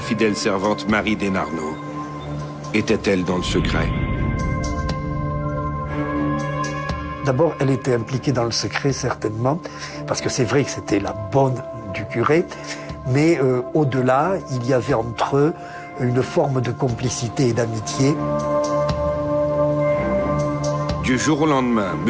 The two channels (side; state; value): both; identical; correlation 1.00